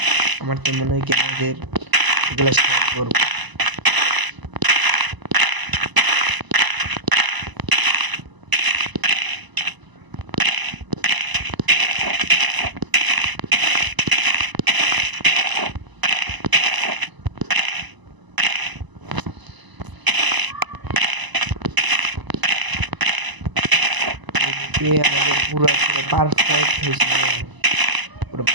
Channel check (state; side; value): late; left; 1.0 ms